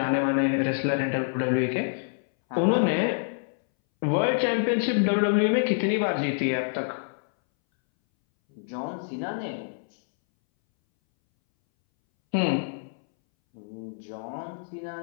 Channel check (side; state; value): right; silent; 61 dB below the other